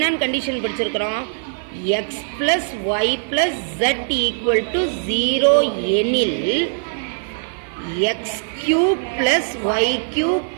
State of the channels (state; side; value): silent; left; 65 dB below the other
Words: கண்டிஷன் படிச்சிருக்கிறோம்? X plus y plus z equal to 0 எனில் x cube plus y cube